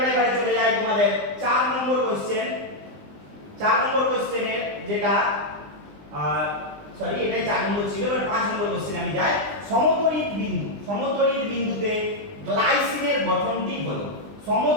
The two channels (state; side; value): late; left; 20 ms